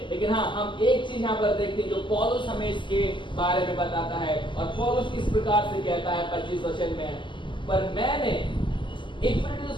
लेकिन हाँ, हम एक चीज यहाँ पर देखते हैं जो पौलुस हमें इसके बारे में बताता है। और पौलुस किस प्रकार से कहता है 25 वचन में, पर मैंने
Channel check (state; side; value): late; right; 0.24 ms